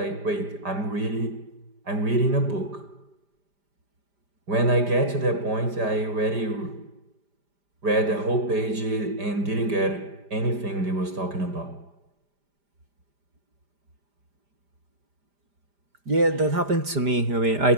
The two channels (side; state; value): left; late; 5.0 ms